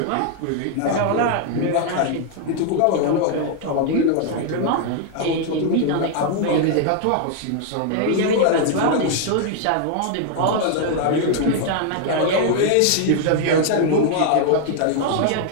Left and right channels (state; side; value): different; both; correlation 0.00